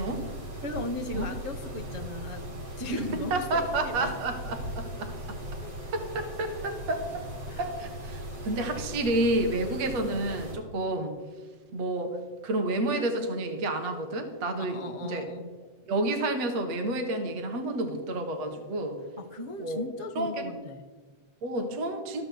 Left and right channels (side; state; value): left; late; 7.8 ms